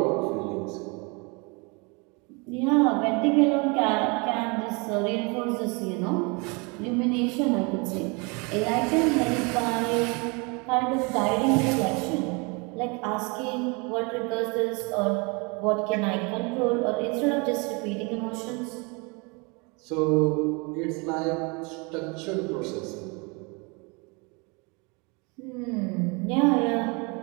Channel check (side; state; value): left; quieter; 30.2 dB